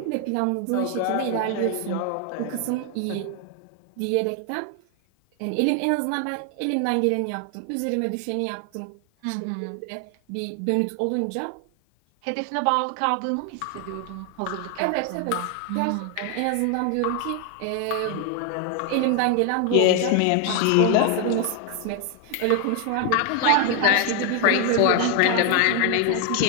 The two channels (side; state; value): both; different; correlation 0.01